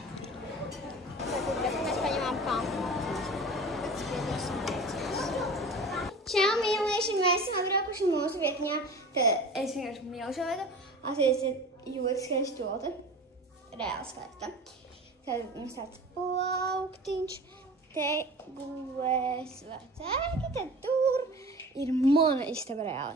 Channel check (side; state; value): both; normal; correlation 0.37